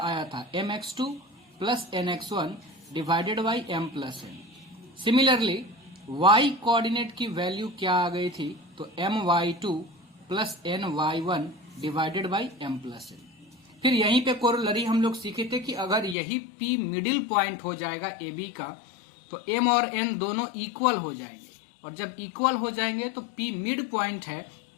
था mx2 plus nx1 divided by m plus n। Similarly y coordinate की वैल्यू क्या आ गई थी, तो my2 plus ny1 divided by m plus n। फिर यहीं पे कोरोलरी हम लोग सीखे थे कि अगर यही p मिडिल पॉइंट हो जाएगा AB का तो m और n दोनों इक्वल हो जाएंगे, और जब इक्वल हो जाएंगे तो p मिड पॉइंट है,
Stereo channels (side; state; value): right; drops out; at 16.2 s